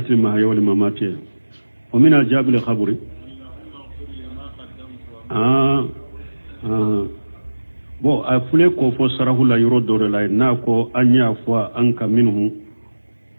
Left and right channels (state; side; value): inverted; both; correlation -1.00